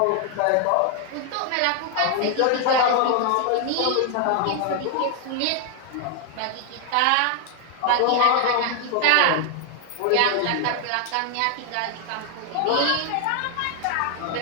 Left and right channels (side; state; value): both; different; correlation 0.00